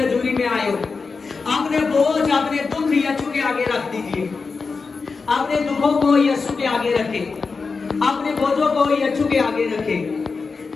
में आए हो, अपने बोझ, अपने दुख यीशु के आगे रख दीजिए। अपने दुखों को यीशु के आगे रखें, अपने बोझों को यीशु के आगे रखें,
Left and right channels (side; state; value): right; quieter; 4.6 dB